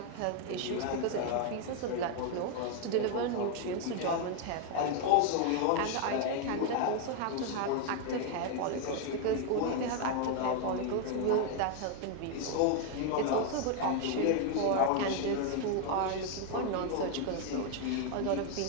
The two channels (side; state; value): both; different; correlation 0.01